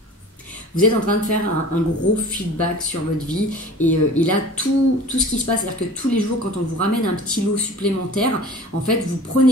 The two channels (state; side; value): normal; both; correlation 0.42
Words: Vous êtes en train de faire un gros feedback sur votre vie et là tout ce qui se passe, c'est-à-dire que tous les jours quand on vous ramène un petit lot supplémentaire, en fait vous